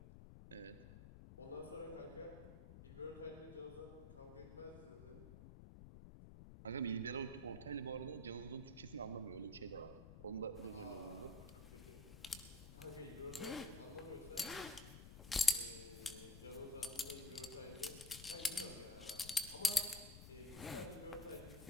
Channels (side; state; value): left; noise; rumble, 13 dB below the sound